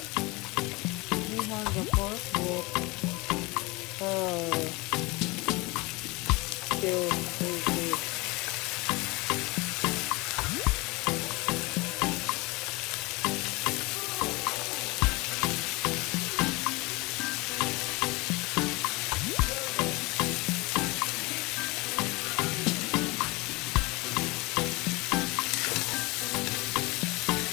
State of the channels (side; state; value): right; quieter; 24.5 dB